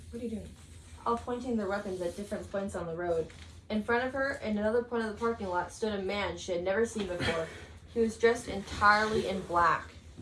What are you doing? All pointing their weapons at different points on the road. In front of her, in another point of the parking lot, stood a man she had never seen before. He was dressed entirely in black.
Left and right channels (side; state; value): both; identical; correlation 1.00